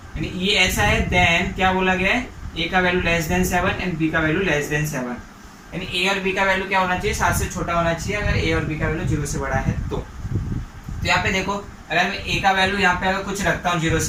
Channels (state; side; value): identical; both; correlation 1.00